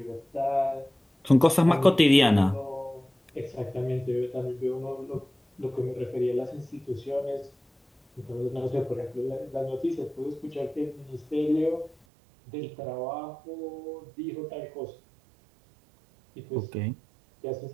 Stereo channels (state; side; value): drops out; left; at 12.0 s